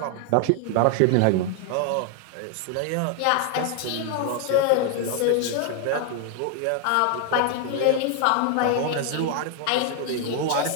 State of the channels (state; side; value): different; both; correlation 0.00